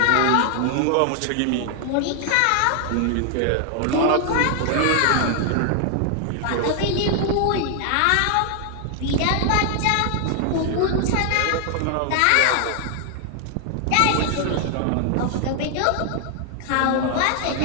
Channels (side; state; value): both; different; correlation 0.00